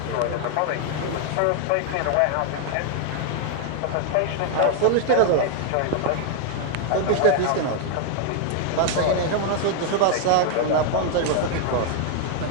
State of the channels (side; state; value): both; different; correlation 0.00